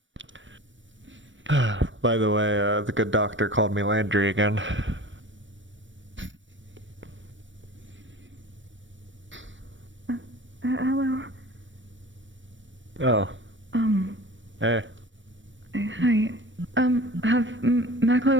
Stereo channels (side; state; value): left; late; 0.56 ms